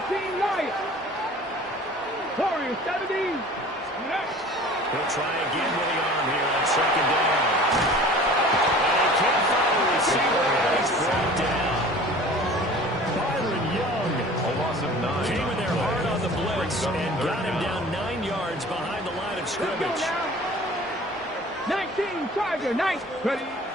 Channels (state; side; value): normal; both; correlation 0.44